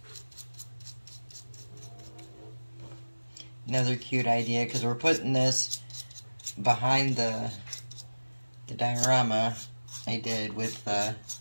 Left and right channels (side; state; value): both; inverted; correlation -1.00